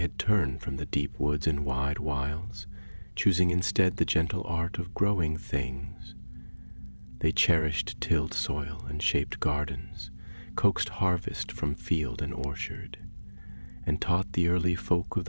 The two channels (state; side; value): inverted; both; correlation -1.00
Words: turned from the deep woods and wide wilds, choosing instead the gentle art of growing things. They cherished tilled soil and shaped gardens, coaxed harvest from field and orchard, and taught the early folk of